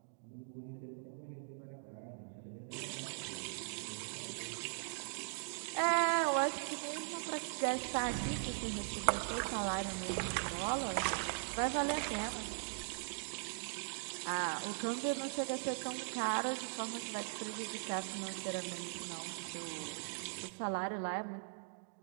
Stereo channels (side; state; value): left; silent; digital silence